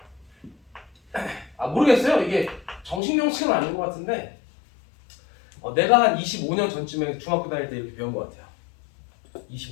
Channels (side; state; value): right; drops out; at 3.0 s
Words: 모르겠어요. 이게 정식 명칭은 아닌 것 같은데 내가 한 25년 전쯤에 중학교 다닐 때 이렇게 배운 것 같아요.